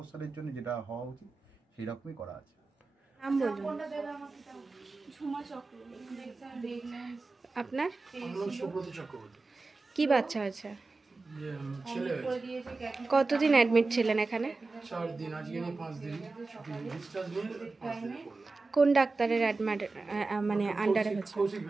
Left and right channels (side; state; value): left; quieter; 3.7 dB